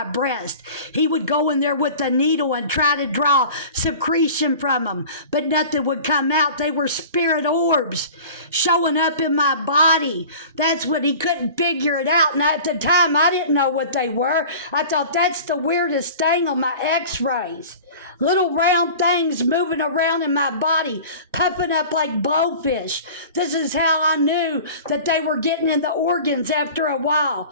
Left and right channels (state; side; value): inverted; both; correlation -0.40